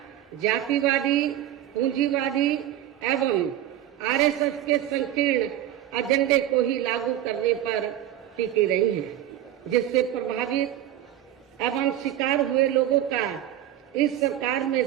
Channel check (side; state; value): left; quieter; 12.2 dB